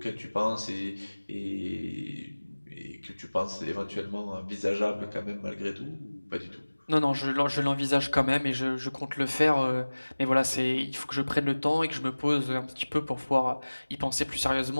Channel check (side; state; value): both; inverted; correlation -1.00